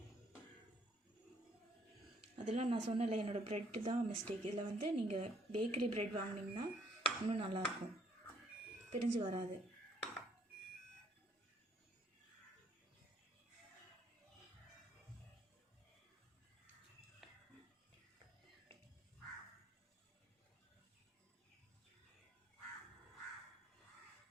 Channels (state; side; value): normal; both; correlation 0.66